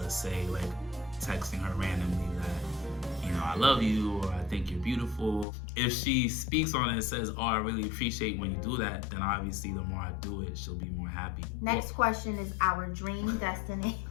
say like texting her randomly that, I love you, or I think you're beautiful. If she speaks on it and says, "Oh, I really appreciate when you do that," then obviously the more I do it, she'll be more happy. Next question is our dream destination.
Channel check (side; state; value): right; drops out; at 5.5 s